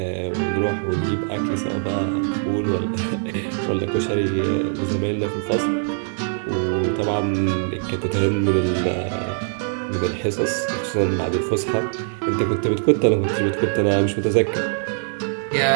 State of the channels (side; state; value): left; silent; digital silence